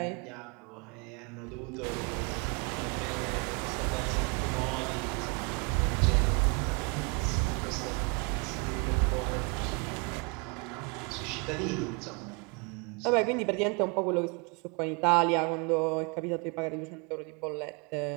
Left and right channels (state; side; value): quieter; left; 32.6 dB